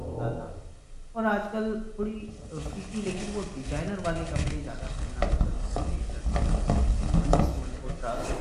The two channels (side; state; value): both; identical; correlation 1.00